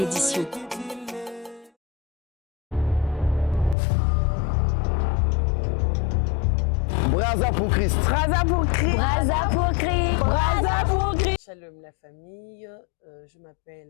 Braza pour Christ. Braza pour Christ. Braza pour Christ. Braza pour Christ. Shalom la famille, je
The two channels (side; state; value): right; drops out; at 3.8 s